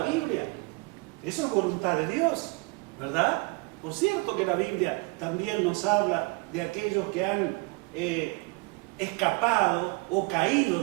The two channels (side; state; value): left; quieter; 28.0 dB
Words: Biblia. Eso es voluntad de Dios, ¿verdad? Por cierto que la Biblia también nos habla de aquellos que han escapado o caído